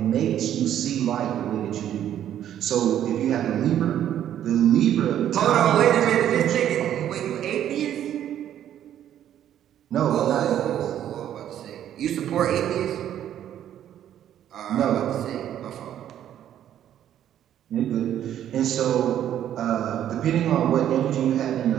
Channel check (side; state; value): left; quieter; 10.8 dB